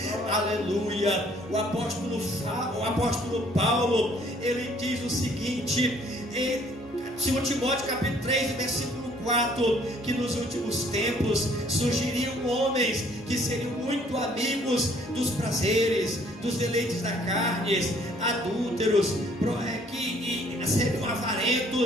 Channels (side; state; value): both; normal; correlation 0.60